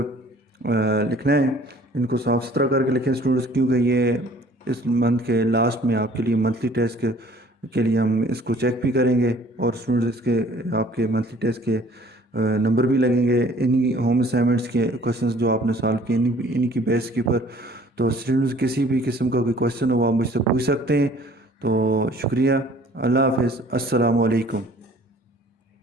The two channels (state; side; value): normal; both; correlation 0.54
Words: लिखना है, इनको साफ़ सुथरा करके लिखें स्टूडेंट्स, क्योंकि ये इस मंथ के लास्ट में आपके लिए मंथली टेस्ट के लिए हम इसको चेक भी करेंगे, और स्टूडेंट्स इसके आपके मंथली टेस्ट के नंबर भी लगेंगे इन्हीं होम असाइनमेंट्स के क्वेश्चंस जो आपने सॉल्व किए इन्हीं की बेस के ऊपर। तो स्टूडेंट्स किसी भी किस्म का कोई क्वेश्चन हो आप मुझसे पूछ सकते हैं। तो शुक्रिया, अल्लाह हाफ़िज़, अस्सलामु अलैकुम।